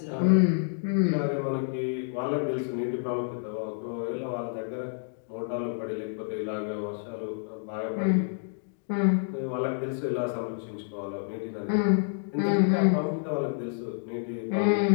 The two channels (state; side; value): silent; right; digital silence